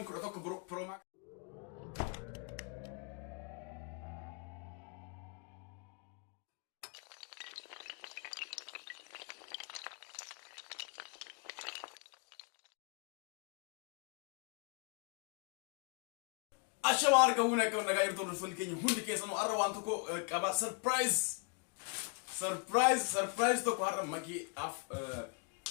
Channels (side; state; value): right; quieter; 37.0 dB